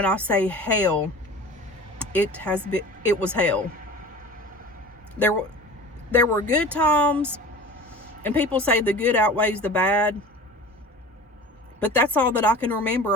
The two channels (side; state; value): both; normal; correlation 0.38